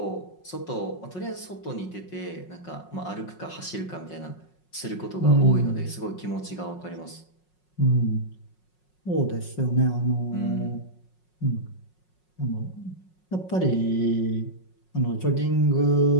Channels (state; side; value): late; right; 5.5 ms